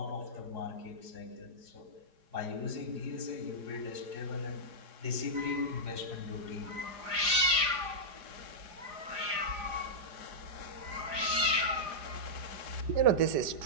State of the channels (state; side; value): late; left; 4.9 ms